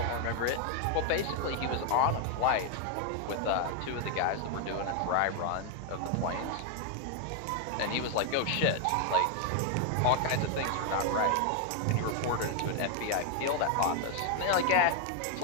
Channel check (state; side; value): different; both; correlation 0.00